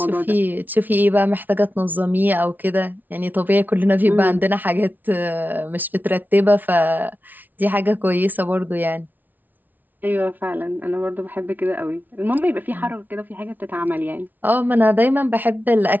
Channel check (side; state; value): left; late; 0.082 ms